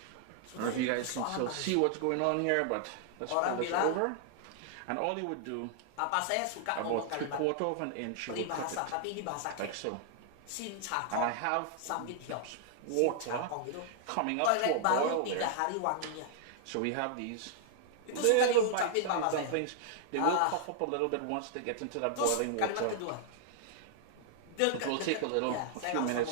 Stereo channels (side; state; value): both; different; correlation -0.01